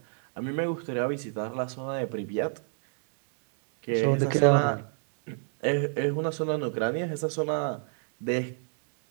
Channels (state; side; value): silent; left; 58 dB below the other